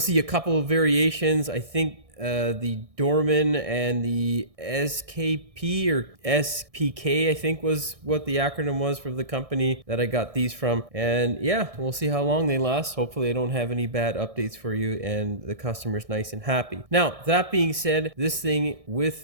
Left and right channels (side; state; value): left; late; 1.6 ms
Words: a couple of variations. I think the Dorman and the SKP or SPK, I think was what the acronym was for the company that I got these from. And yeah, we'll see how long they last. Hopefully I don't have any bad updates for you and the customer's nice and happy. Now, that being said, this thing